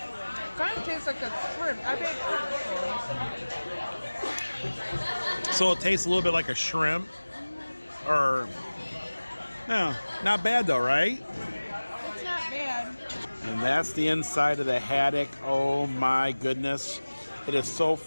Kind of tastes like a shrimp. I've had shrimp before. So it tastes a little bit like a shrimp. Or no, not bad though, right? It's not bad. And that's the inside of the haddock. Oh my goodness. It is so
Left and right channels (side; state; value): both; inverted; correlation -1.00